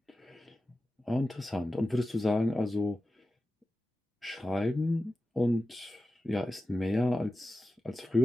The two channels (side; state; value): both; normal; correlation 0.93